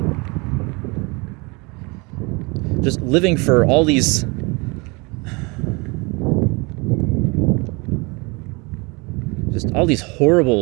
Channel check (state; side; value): quieter; left; 27.8 dB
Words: Just living for all these